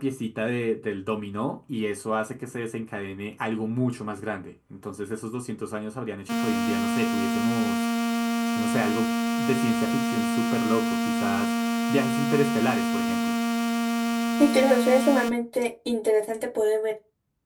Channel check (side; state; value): both; identical; correlation 1.00